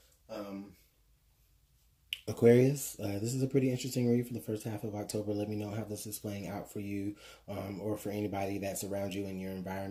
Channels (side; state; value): both; identical; correlation 1.00